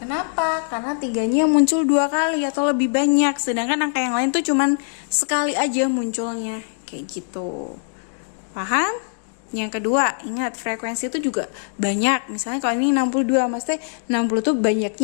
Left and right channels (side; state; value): right; silent; digital silence